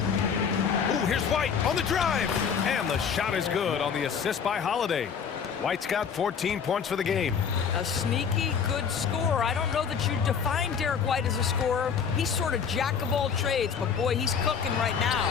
Ooh, here's White on the drive. And the shot is good on the assist by Holiday. White's got 14 points for the game. A sneaky good scorer. I don't know that you define Derek White as a scorer. He's sort of jack of all trades, but boy, he's cooking right now.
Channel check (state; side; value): quieter; right; 6.8 dB